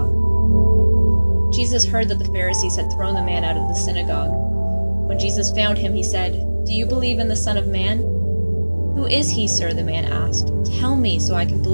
Jesus heard that the Pharisees had thrown the man out of the synagogue. When Jesus found him, he said, "Do you believe in the Son of Man?" "Who is he, sir?" the man asked. "Tell me so I can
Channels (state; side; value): inverted; both; correlation -1.00